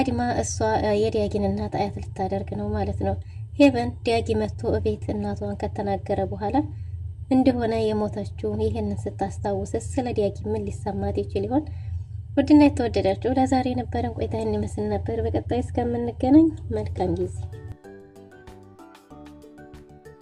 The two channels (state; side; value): identical; both; correlation 1.00